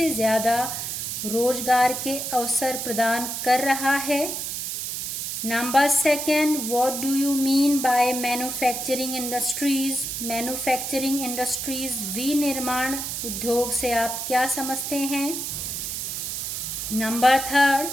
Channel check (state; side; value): noise; right; hiss, 4 dB below the sound